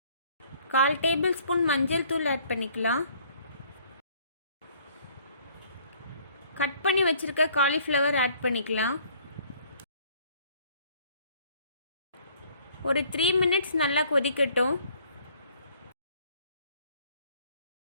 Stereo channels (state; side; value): inverted; both; correlation -0.59